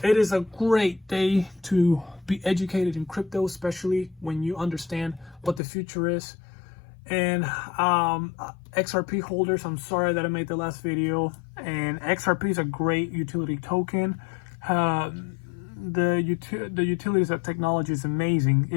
it is a great day to be educated in crypto, especially when you understand what the future is. And XRP holders, I'm sorry that I made the last video. And XRP is a great utility token. The utilities of technology is amazing.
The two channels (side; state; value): right; drops out; at 5.6 s